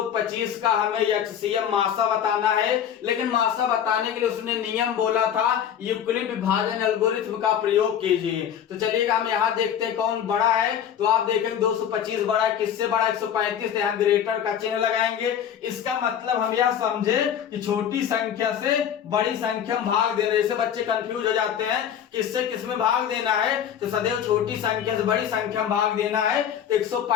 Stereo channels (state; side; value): quieter; right; 9.1 dB